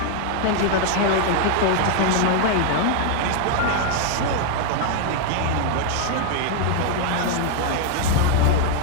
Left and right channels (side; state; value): both; different; correlation 0.00